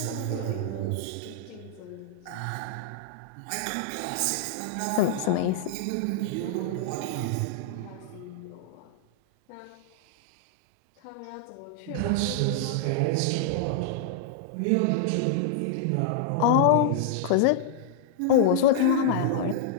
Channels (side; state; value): both; different; correlation -0.01